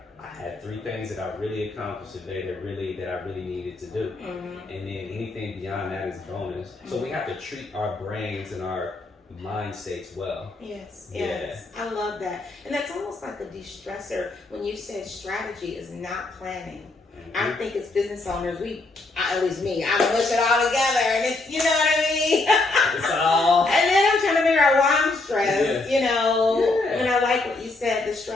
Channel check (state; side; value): quieter; right; 3.2 dB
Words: I had 3 things that I really accomplished today that I really needed to do. And then anything beyond that is bonus. So we have to treat our brains and our mind states well. Yes. I love that. And that's almost like a de-stressor when you said strategy is not planning. I think as business owners, at least me, I push it all together, and it's, you know what I mean? It's all. And then I'm trying to figure out why I'm stressed, you know? And I like what you said, the